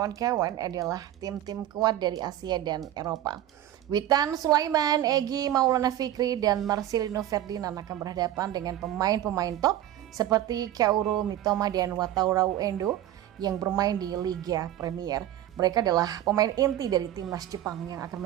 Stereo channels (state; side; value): quieter; left; 12.8 dB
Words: adalah tim-tim kuat dari Asia dan Eropa. Witan Sulaiman, Egy Maulana Fikri, dan Marcelino Ferdinand akan berhadapan dengan pemain-pemain top seperti Kaoru Mitoma dan Wataru Endo yang bermain di Liga Premier. Mereka adalah pemain inti dari timnas Jepang yang